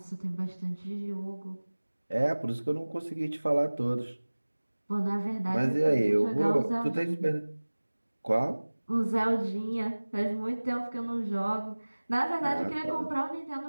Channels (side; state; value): both; inverted; correlation -1.00